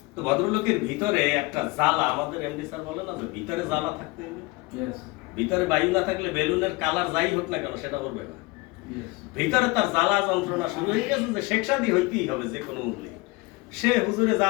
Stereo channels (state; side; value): quieter; right; 23.7 dB